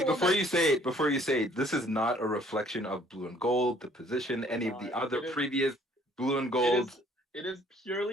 the one before that- you say it. Before you say it, this is not a reflection of Blue and Gold, the position, any of the other It is- previous Blue and Gold. It is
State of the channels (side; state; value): both; normal; correlation 0.59